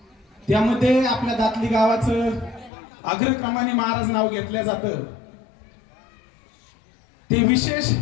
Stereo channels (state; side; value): drops out; right; at 2.7 s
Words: त्यामध्ये आपल्या दातली गावाचं अग्रक्रमाने महाराज नाव घेतलं जातं। ते विशेष